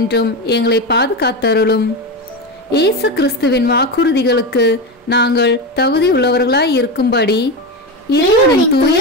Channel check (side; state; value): both; normal; correlation 0.17